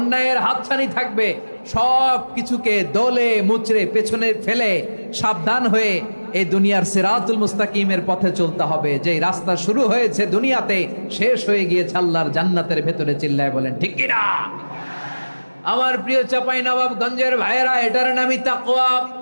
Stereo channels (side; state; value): both; inverted; correlation -1.00